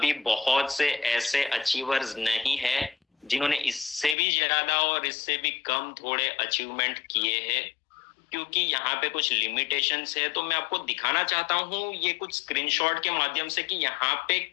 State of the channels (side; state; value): right; drops out; at 4.2 s